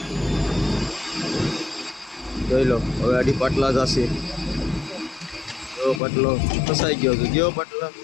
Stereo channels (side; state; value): right; drops out; at 6.0 s